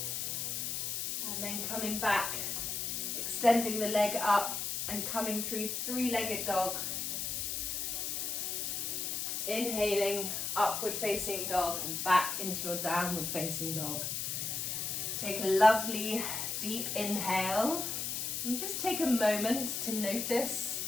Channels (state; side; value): noise; left; hiss, 2 dB below the sound